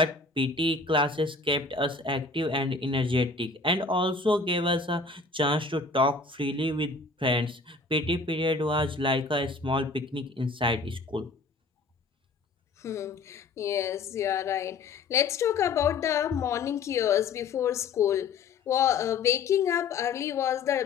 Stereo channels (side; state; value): right; quieter; 4.0 dB